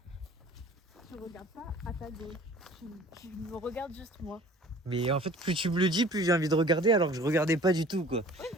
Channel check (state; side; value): normal; both; correlation 0.48